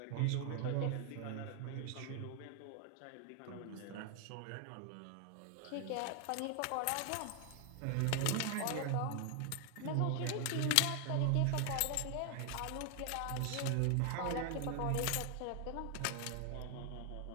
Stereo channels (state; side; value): different; both; correlation 0.00